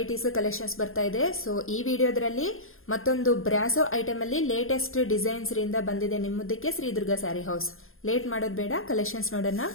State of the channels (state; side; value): late; right; 0.60 ms